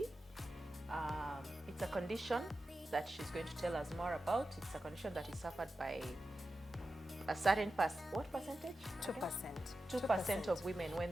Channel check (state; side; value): normal; both; correlation 0.92